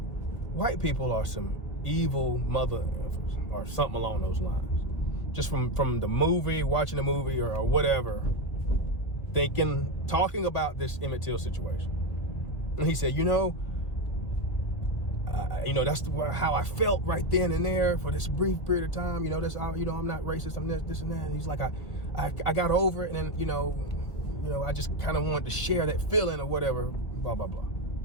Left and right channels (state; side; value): late; right; 2.0 ms